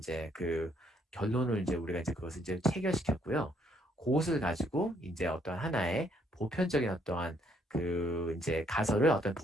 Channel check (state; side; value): normal; both; correlation 0.69